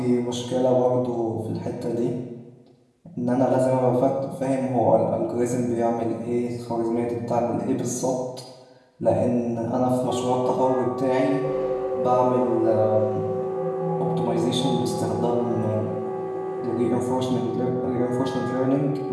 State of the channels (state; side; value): identical; both; correlation 1.00